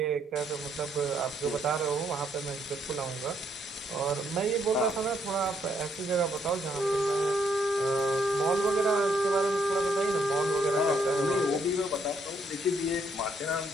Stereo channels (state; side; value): normal; both; correlation 0.72